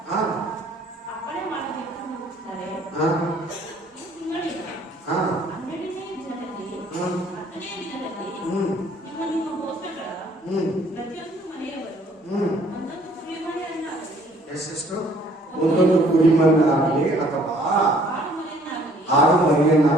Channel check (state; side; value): normal; both; correlation 0.59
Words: ಎಷ್ಟೆಷ್ಟು ಒಂದೊಂದು ಕುರಿಮನ್ನಾಗಲಿ ಅಥವಾ ಆಡು